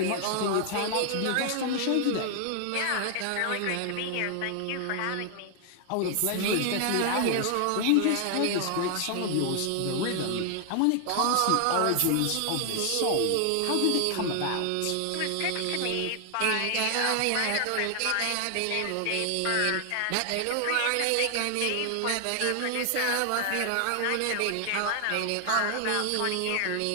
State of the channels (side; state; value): both; different; correlation 0.00